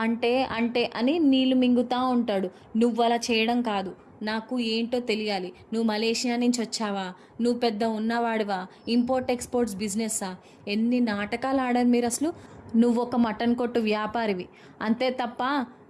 అంటే అంటే అని నీళ్లు మింగుతూ ఉంటాడు. నువ్వు అలా చేయడం కాదు, నాకు ఏంటో తెలియాలి. నువ్వు మలేషియా నుంచి వచ్చావా? నువ్వు పెద్ద ఉన్నవాడివా? Import exports బిజినెస్సా? ఎన్ని నాటకాలు ఆడారు మీరు అసలు. నువ్వు ఒక మటన్ కొట్టు వ్యాపారివి అంతే తప్ప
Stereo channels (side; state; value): both; identical; correlation 1.00